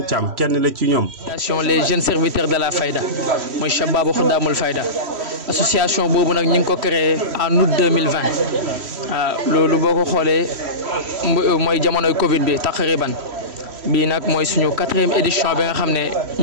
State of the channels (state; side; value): late; left; 3.1 ms